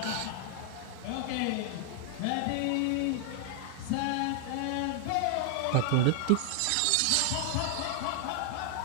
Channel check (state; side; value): different; both; correlation 0.00